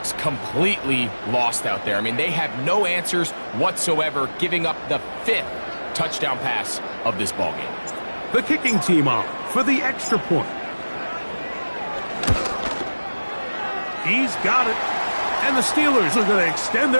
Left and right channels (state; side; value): inverted; both; correlation -1.00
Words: completely lost out there. I mean, they have no answers whatsoever, giving up the 5th touchdown pass of this ballgame. The kicking team on for the extra point. He's got it. And the Steelers are going to extend